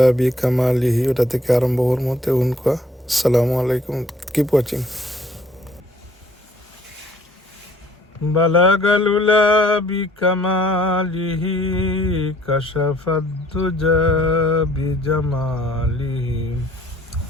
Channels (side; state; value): both; normal; correlation 0.59